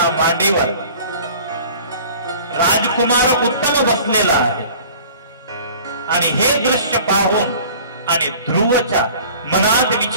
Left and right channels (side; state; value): both; inverted; correlation -0.47